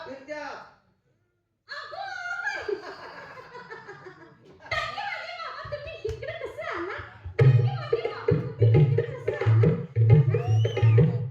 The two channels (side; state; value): both; identical; correlation 1.00